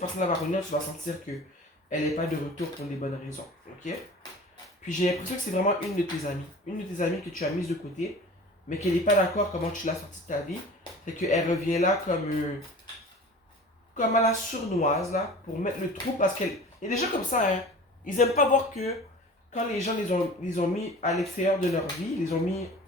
va revenir, tu vas sentir que elle n'est pas de retour pour les bonnes raisons, ok? Puis j'ai l'impression que c'est vraiment une de tes amies. Une de tes amies que tu as mise de côté, mais qu'elle n'est pas d'accord comment tu l'as sortie de ta vie. Fait qu'elle revient là comme à la sournoise, là, pour mettre le trou, parce qu'elle... Il y a des gens comme ça, hein. Ils aiment pas voir que quand les gens les ont mis à l'extérieur de leur vie, les ont mis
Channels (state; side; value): normal; both; correlation 0.40